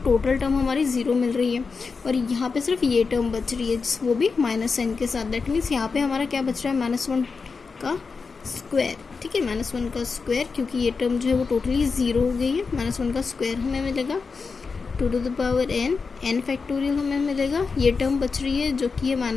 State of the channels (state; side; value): quieter; right; 4.8 dB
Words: total term हमारी zero मिल रही है, और यहाँ पे सिर्फ ये टर्म बच रही है वो भी माइनस एन के साथ। दैट मीन्स यहाँ पे हमारा क्या बच रहा है, माइनस वन का स्क्वायर। ठीक है, माइनस वन का स्क्वायर, क्योंकि ये टर्म जो है वो टोटली ज़ीरो हो गई है। माइनस वन का स्क्वायर हमें मिलेगा two to the power n, n factorial हमें मिलेगा। ये टर्म बच रही है जो कि है